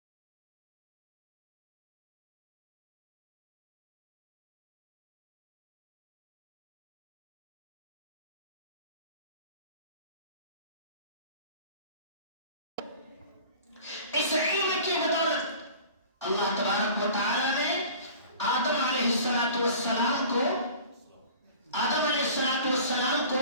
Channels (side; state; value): both; inverted; correlation -0.43